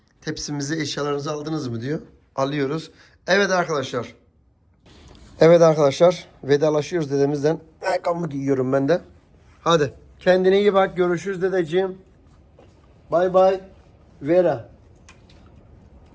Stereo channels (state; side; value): identical; both; correlation 1.00